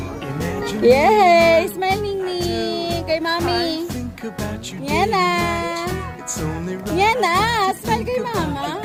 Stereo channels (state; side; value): identical; both; correlation 1.00